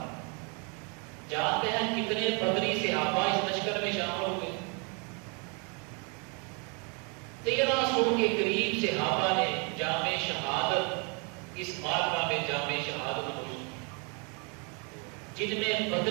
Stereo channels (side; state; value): left; quieter; 34.2 dB